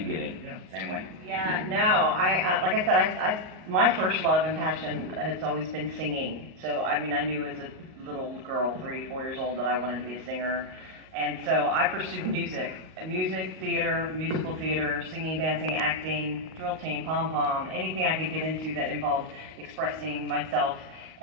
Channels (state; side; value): late; left; 38 ms